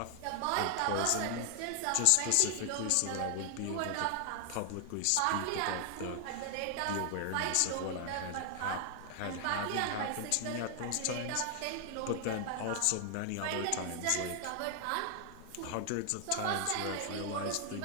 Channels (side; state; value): both; different; correlation 0.00